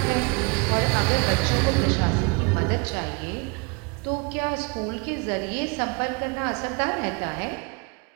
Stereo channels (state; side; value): quieter; left; 30.3 dB